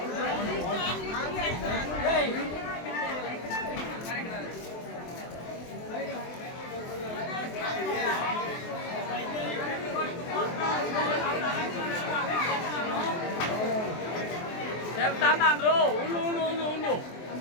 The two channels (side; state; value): right; late; 23 ms